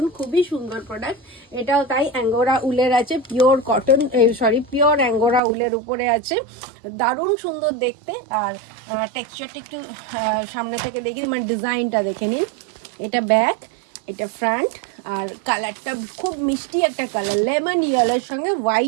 খুবই সুন্দর প্রোডাক্ট। এটাও তাই অ্যাঙ্গোরা উলের আছে, পিওর কটন পিওর অ্যাঙ্গোরা উলের উপরে আছে, দারুণ সুন্দর দেখতে। আর টেক্সচারটা একটু সামনে থেকে দেখি, মানে ডিজাইনটা দেখে নিন। এটা ব্যাক, এটা ফ্রন্ট। আর কালারটা খুব মিষ্টি একটা কালার, লেমন ইয়েলোর সঙ্গে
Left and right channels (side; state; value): left; drops out; at 5.4 s